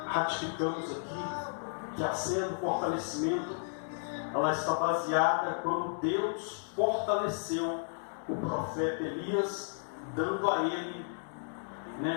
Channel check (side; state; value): right; silent; digital silence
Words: ratificamos aqui, que a cena do fortalecimento, ela está baseada quando Deus fortaleceu o profeta Elias, dando a ele,